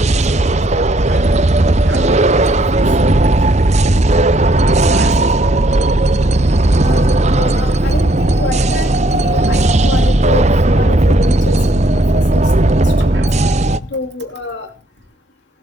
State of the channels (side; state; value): both; normal; correlation 0.68